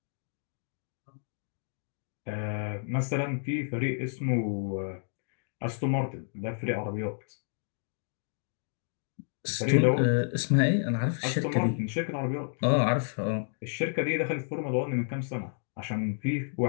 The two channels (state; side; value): silent; right; digital silence